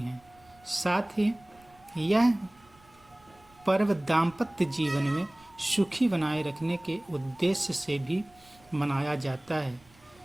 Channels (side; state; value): right; noise; rumble, 29 dB below the sound